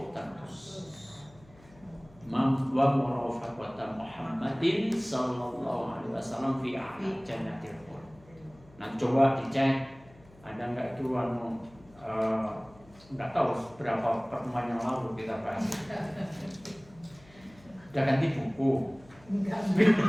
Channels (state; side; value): noise; left; hum, 25 dB below the sound